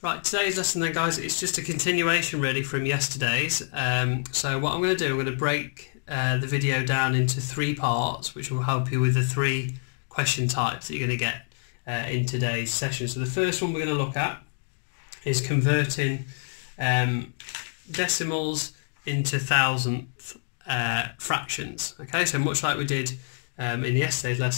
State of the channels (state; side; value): silent; right; digital silence